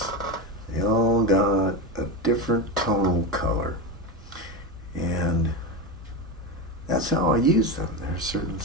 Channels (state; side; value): normal; both; correlation 0.18